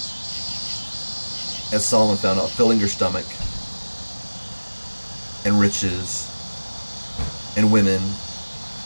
as Solomon found out, filling your stomach and riches and women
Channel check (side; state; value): both; inverted; correlation -1.00